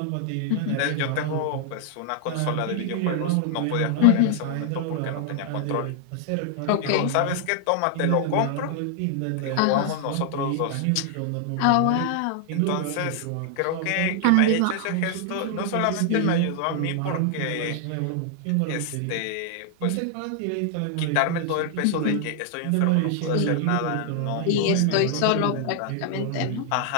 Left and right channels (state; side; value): different; both; correlation 0.00